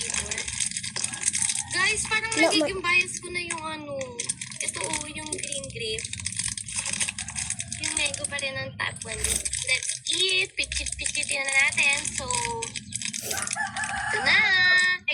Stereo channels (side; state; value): both; identical; correlation 1.00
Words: Guys, parang nagiging bias ko na yung ano. Ito yung green grape. Yung mango pa rin ang top 1. Let's eat. Pichit-pichitin na natin. So, ito na.